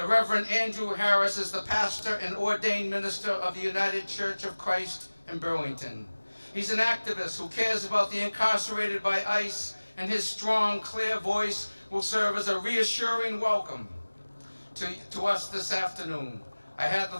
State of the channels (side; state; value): both; inverted; correlation -1.00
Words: Reverend Andrew Harris is the pastor and ordained minister of the United Church of Christ in Burlington. He's an activist who cares about the incarcerated by ICE, and his strong, clear voice will serve as a reassuring welcome to us this afternoon. I had